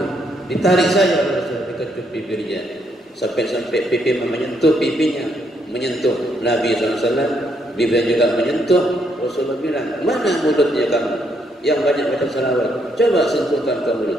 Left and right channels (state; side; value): normal; both; correlation 0.74